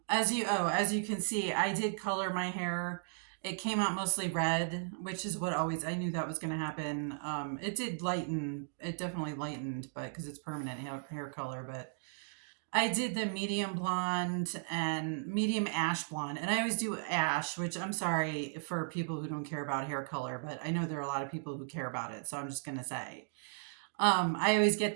as you can see, I did color my hair. It came out mostly red, which is what always I knew that was going to happen. It did lighten. It definitely lightened, but because it's permanent hair color. But I did the medium blonde and medium ash blonde, and I always do ash, which I'm sorry for people who don't care about hair color, but I know there are a lot of people who care about it, so I'm just gonna say. I always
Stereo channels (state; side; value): silent; left; digital silence